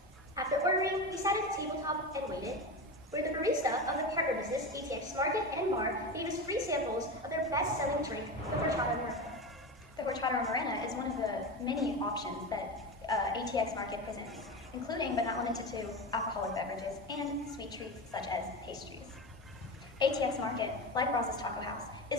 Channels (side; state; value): both; normal; correlation 0.22